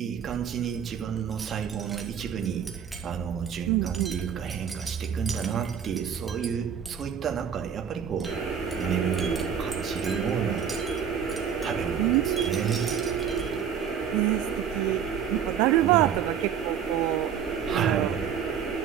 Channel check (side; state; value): left; quieter; 8.0 dB